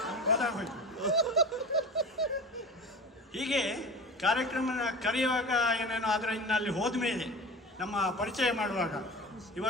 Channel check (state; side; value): normal; both; correlation 0.33